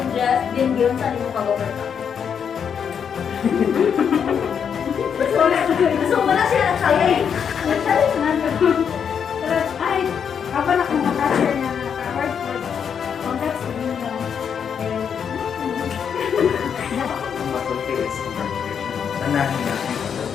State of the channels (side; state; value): right; quieter; 7.4 dB